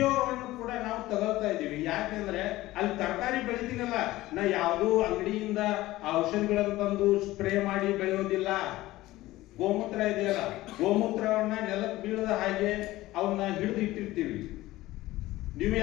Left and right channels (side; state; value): right; quieter; 17.3 dB